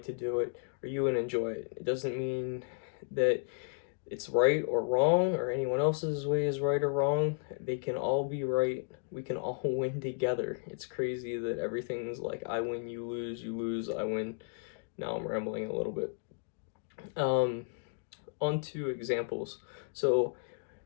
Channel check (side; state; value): right; silent; digital silence